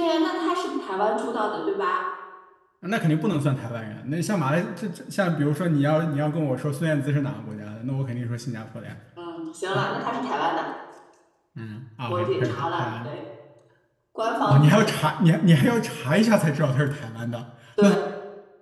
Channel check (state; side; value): identical; both; correlation 1.00